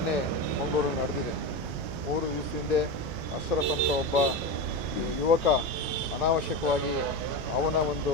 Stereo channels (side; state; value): left; late; 9.0 ms